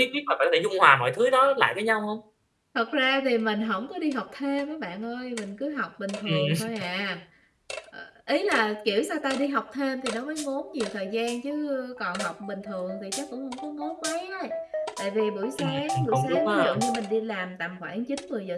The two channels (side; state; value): both; identical; correlation 1.00